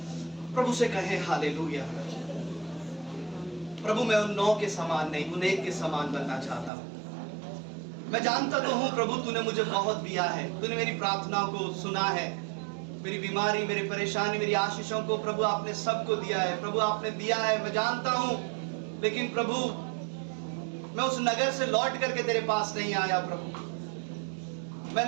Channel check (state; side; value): drops out; left; at 6.7 s